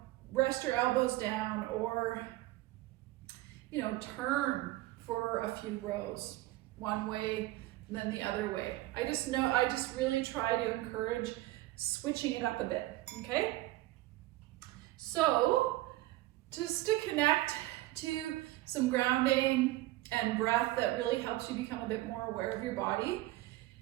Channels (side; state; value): left; quieter; 17.5 dB